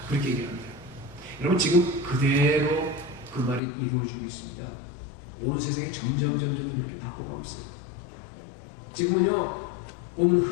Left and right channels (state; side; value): drops out; right; at 3.6 s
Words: 그렇게 얘기합니다. 여러분, 지금 그대로 그 그 말이 이루어지고 있습니다. 오늘 세상이 점점 그렇게 바꿔가고 있어요. 지금은요, 보면